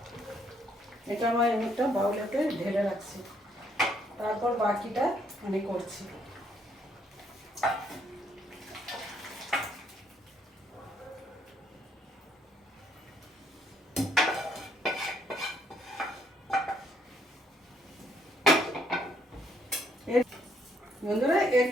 এটা আমার একটা বাউলেতে ঢেলে রাখছি, তারপর বাকিটা আমি করছি। বন্ধুরা এর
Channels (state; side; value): normal; both; correlation 0.69